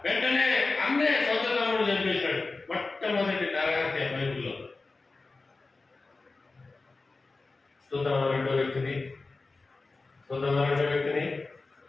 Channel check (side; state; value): right; quieter; 3.7 dB